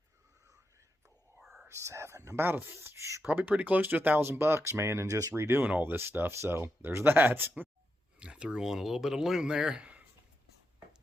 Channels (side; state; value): both; normal; correlation 0.85